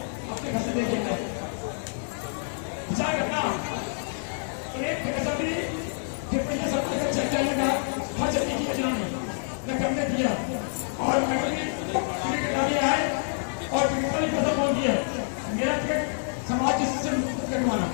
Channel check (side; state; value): right; silent; digital silence